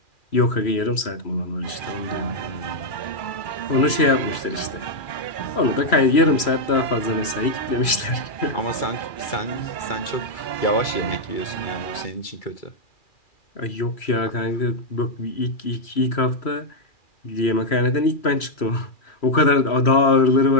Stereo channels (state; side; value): late; right; 3.0 ms